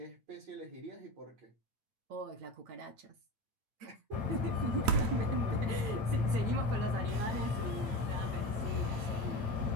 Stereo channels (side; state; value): left; late; 8.9 ms